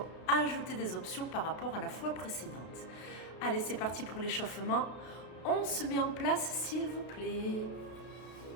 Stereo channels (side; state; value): right; late; 33 ms